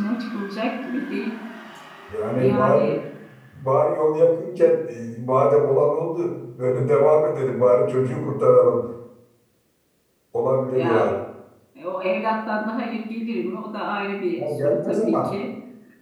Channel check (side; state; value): both; identical; correlation 1.00